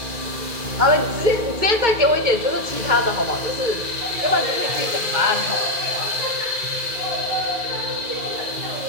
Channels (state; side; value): late; left; 2.4 ms